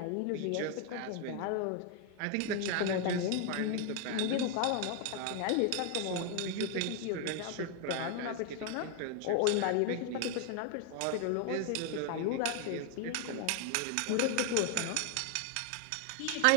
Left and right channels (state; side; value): different; both; correlation 0.00